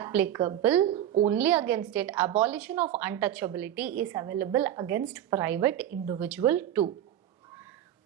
only against it. Abolition of untouchability is available against private individual too.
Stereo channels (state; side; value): quieter; left; 11.3 dB